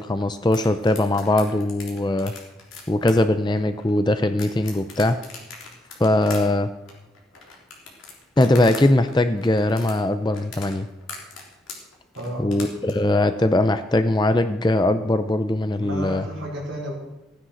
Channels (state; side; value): normal; both; correlation 0.79